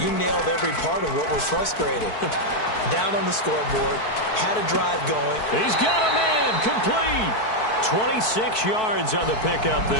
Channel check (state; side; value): late; right; 4.6 ms